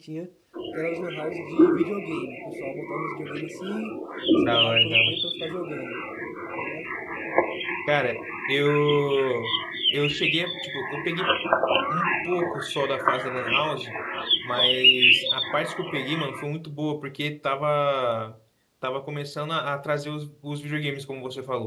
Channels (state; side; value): identical; both; correlation 1.00